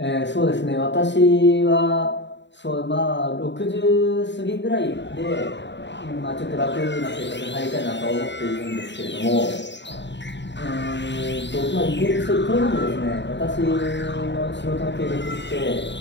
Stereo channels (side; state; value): right; late; 0.52 ms